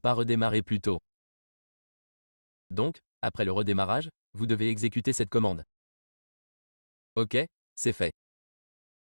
redémarré plus tôt. Donc, après le redémarrage, vous devez exécuter cette commande. Ok, c'est fait.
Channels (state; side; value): inverted; both; correlation -1.00